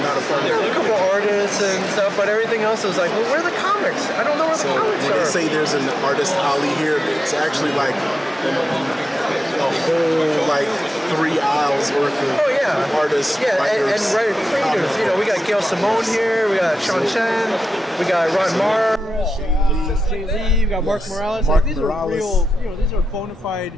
a part of it. There's a couple artists and stuff, but everything else is like, well, where are the comics? I don't know where the comics when are. They say there's an artist alley here, it's actually like a whole 3 aisles worth of artists. Yeah, and writer creators. We got Gail Simone here, we got Sean Chen, we got Ron Marr, Jay Lee, we got Mark Morales. These are real, these are bona fide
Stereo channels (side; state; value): both; normal; correlation 0.91